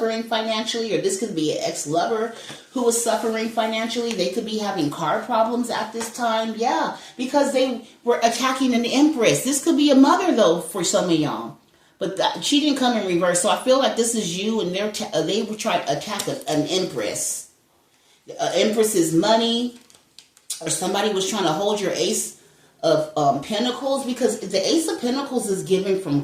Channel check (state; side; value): identical; both; correlation 1.00